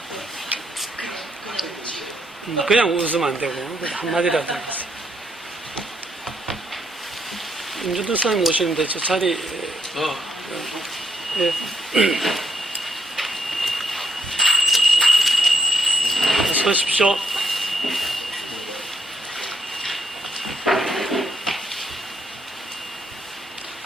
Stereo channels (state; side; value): normal; both; correlation 0.73